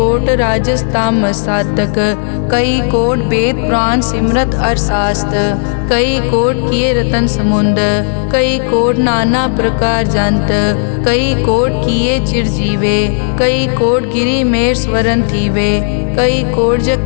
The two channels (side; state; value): right; silent; digital silence